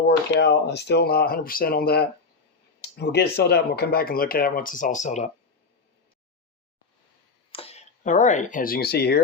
work out. I'm still not 100% on that. We'll get it sealed up and we'll come back and look at it once it's all sealed up. All right, as you can see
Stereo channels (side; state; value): right; quieter; 4.2 dB